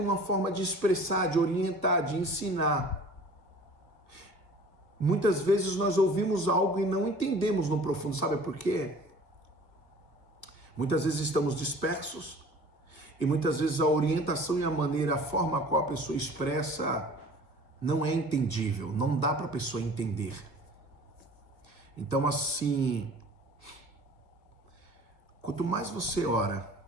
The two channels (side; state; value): right; late; 1.6 ms